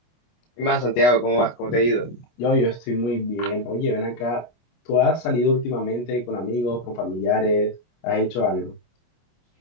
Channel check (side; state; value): right; late; 24 ms